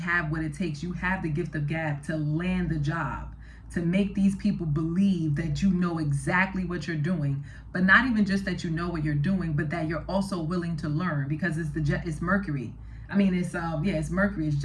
what it takes. You have the gift of gab to land the job, to make these people believe that you know exactly what you're doing. But not even just that you know what you're doing, but that you're also willing to learn, because it's Mercury. I mean, it's Mercury, it's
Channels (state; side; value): identical; both; correlation 1.00